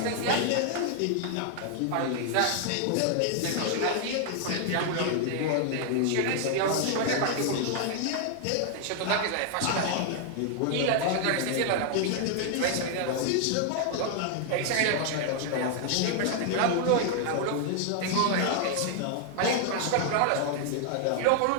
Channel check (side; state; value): both; different; correlation 0.00